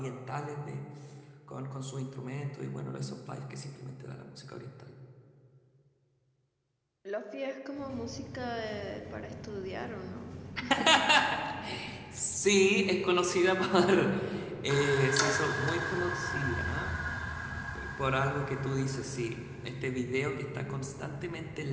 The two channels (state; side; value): identical; both; correlation 1.00